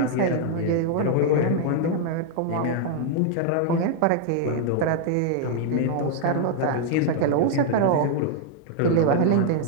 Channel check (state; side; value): different; both; correlation 0.00